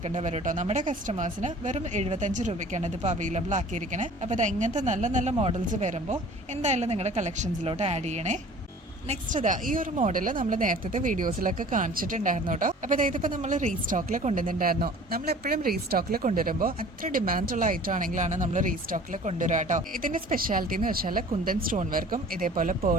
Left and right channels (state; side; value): normal; both; correlation 0.47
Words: വരും കേട്ടോ. നമ്മുടെ കസ്റ്റമേഴ്സിന് വെറും 75 രൂപയ്ക്കാണ് ഇതിപ്പോൾ അവൈലബിൾ ആക്കിയിരിക്കണേ. അപ്പോൾ ഇങ്ങനത്തെ നല്ല നല്ല മോഡൽസ് വരുമ്പോൾ എന്തായാലും നിങ്ങളുടെ കളക്ഷൻസിലോട്ട് ആഡ് ചെയ്യണേ. നെക്സ്റ്റ് ഈ ഒരു മോഡൽ നമ്മൾ നേരത്തെ വീഡിയോസിലൊക്കെ കാണിച്ചിട്ടുണ്ടായിരുന്നു കേട്ടോ. അപ്പോൾ ഇതിപ്പോൾ നമ്മൾ റീസ്റ്റോക്കിൽ കൊണ്ടുവന്നിട്ടുണ്ടായിരുന്നു. നമ്മൾ എപ്പോഴും റീസ്റ്റോക്കിൽ കൊണ്ടുവരുമ്പോൾ അത്ര ഡിമാൻഡുള്ള ഐറ്റം ആണെങ്കിലാണ് നമ്മൾ റീസ്റ്റോക്കിൽ കൊണ്ടുവരിക കേട്ടോ. ഇതിന്റെ സ്പെഷ്യാലിറ്റി എന്ന് വെച്ചാൽ കുന്തൻ സ്റ്റോൺ വർക്കും ഇതേപോലെ